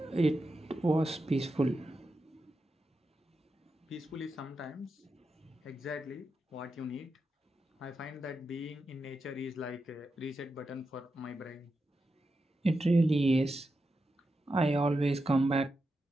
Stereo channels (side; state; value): both; normal; correlation 0.88